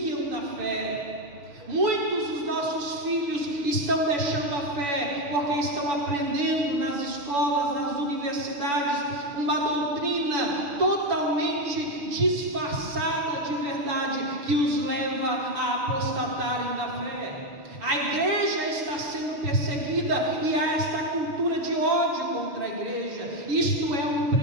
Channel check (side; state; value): left; late; 7.0 ms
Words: da fé. Muitos dos nossos filhos estão deixando a fé porque estão aprendendo nas escolas, nas universidades, uma doutrina totalmente disfarçada de verdade que os leva a apostatarem da fé. A igreja está sendo perseguida e há esta cultura de ódio contra a igreja. Isto é um